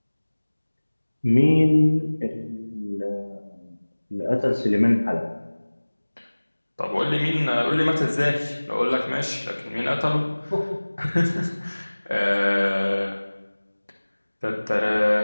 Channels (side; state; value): both; inverted; correlation -1.00